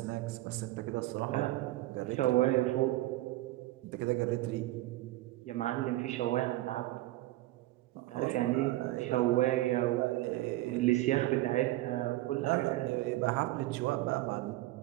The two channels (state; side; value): quieter; left; 17.5 dB